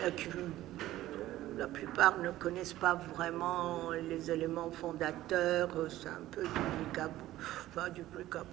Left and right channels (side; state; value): left; quieter; 15.0 dB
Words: qui la plupart ne connaissent pas vraiment les éléments fondateurs, c'est un peu du